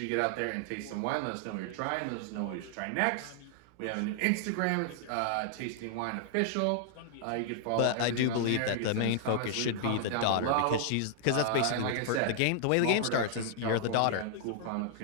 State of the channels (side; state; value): both; different; correlation -0.01